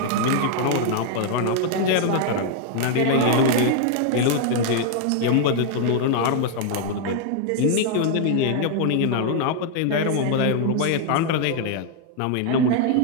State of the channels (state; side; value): different; both; correlation 0.00